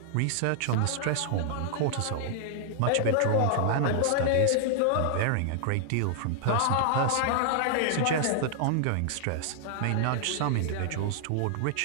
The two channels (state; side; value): different; both; correlation -0.01